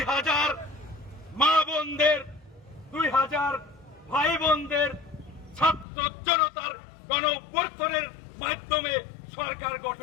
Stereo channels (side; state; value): right; drops out; at 5.9 s